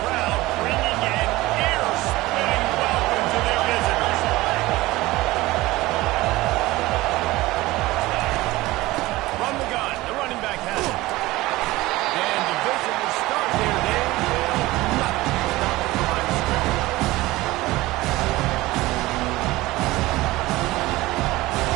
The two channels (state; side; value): quieter; left; 19.0 dB